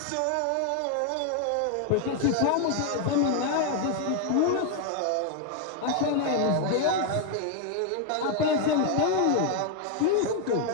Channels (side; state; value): both; different; correlation 0.01